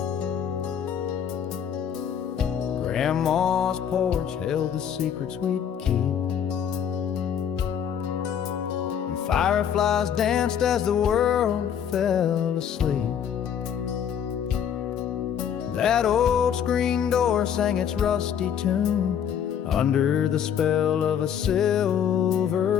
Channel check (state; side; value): quieter; right; 8.6 dB